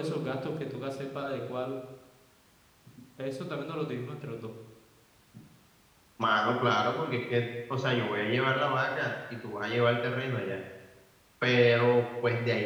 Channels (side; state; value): both; identical; correlation 1.00